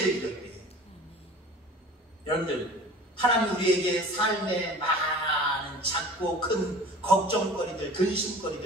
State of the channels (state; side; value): normal; both; correlation 0.42